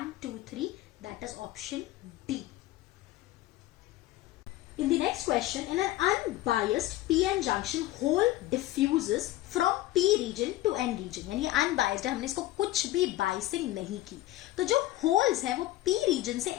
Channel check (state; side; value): quieter; right; 16.1 dB